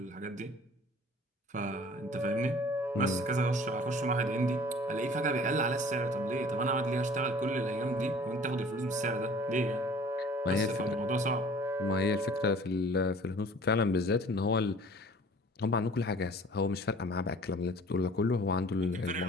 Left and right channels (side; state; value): both; normal; correlation 0.49